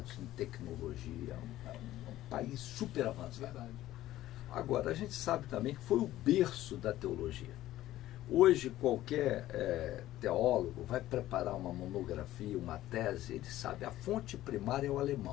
em tecnologia, um país super avançado. Verdade. Agora, a gente sabe também que foi o berço da teologia. Hoje, qualquer teólogo vai preparar uma monografia, uma tese, ele sabe, a fonte primária é o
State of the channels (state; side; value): quieter; right; 14.6 dB